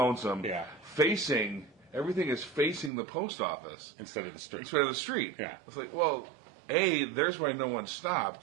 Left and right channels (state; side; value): drops out; left; at 2.9 s